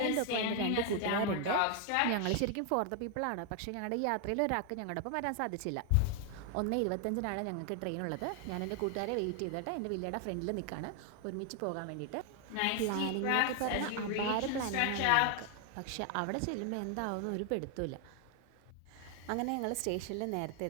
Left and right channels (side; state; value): both; different; correlation 0.00